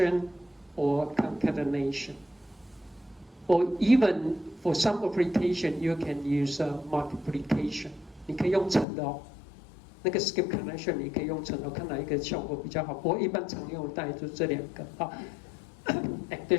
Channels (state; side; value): drops out; right; at 8.8 s